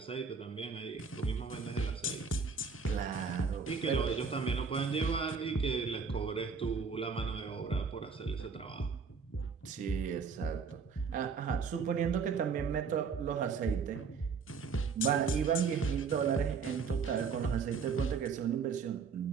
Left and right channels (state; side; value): quieter; left; 5.5 dB